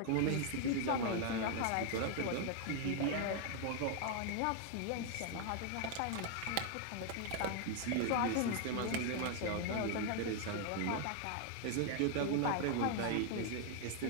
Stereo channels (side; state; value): both; different; correlation 0.00